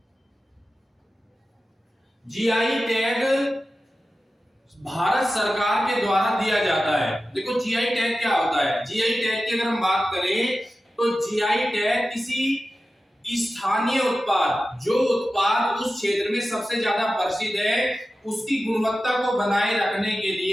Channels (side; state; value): both; normal; correlation 0.94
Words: जीआई टैग भारत सरकार के द्वारा दिया जाता है। देखो जीआई टैग क्या होता है? जीआई टैग की अगर हम बात करें तो जीआई टैग किसी स्थानीय उत्पाद, जो उत्पाद उस क्षेत्र में सबसे ज्यादा प्रसिद्ध है, उसकी गुणवत्ता को बनाए रखने के